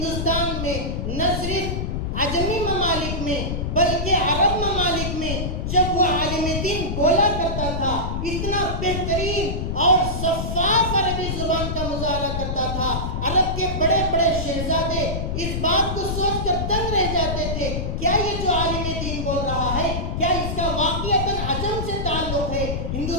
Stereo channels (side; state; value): left; noise; rumble, 2 dB below the sound